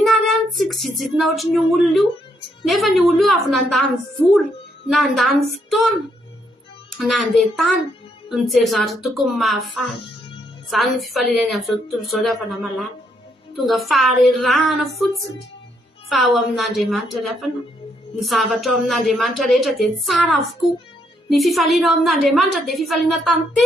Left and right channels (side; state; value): both; normal; correlation 0.74